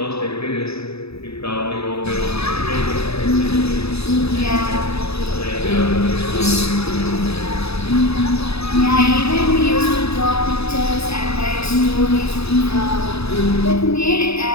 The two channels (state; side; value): late; right; 0.79 ms